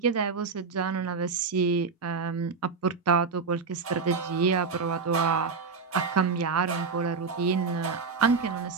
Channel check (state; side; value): quieter; left; 5.1 dB